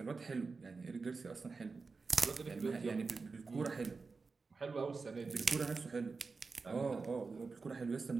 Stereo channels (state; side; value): quieter; left; 4.4 dB